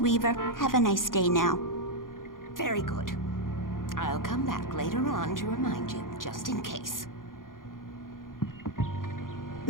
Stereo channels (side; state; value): right; late; 0.90 ms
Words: Have a nice day now. Very good. I'll come back later on to remind you, just in case.